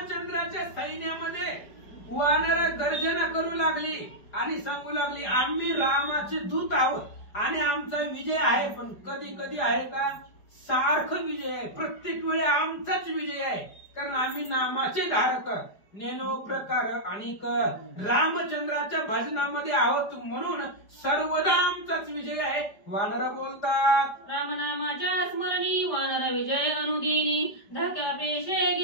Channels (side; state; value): right; late; 5.0 ms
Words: सैन्यामध्ये वानर गर्जना करू लागली आणि सांगू लागली, आम्ही रामाचे दूत आहोत आणि आमचा विजय आहे. पण कधी कधी आहे का, सारखं विजय आहे, प्रत्येक वेळी आमचाच विजय आहे, कारण आम्ही नामाचे धारक नेनो प्रकार आणि रामचंद्राच्या भजनामध्ये आहोत, म्हणून सर्वदा आमचाच विजय आहे. वानर बोलतात, रामनामाच्या स्मरणी वानर विजय अनुदिनी, धाक्या पेशे